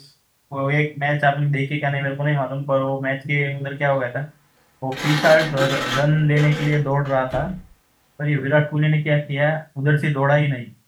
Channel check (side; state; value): both; identical; correlation 1.00